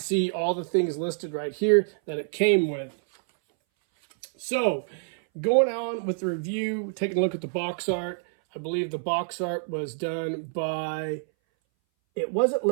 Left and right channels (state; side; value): silent; left; 60 dB below the other